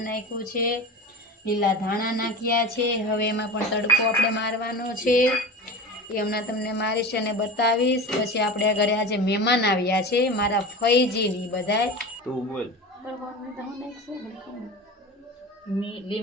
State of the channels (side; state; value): both; normal; correlation 0.31